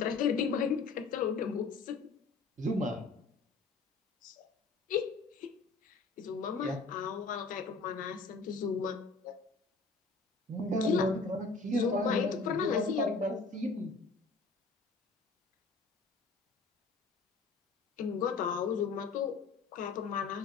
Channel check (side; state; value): right; quieter; 4.2 dB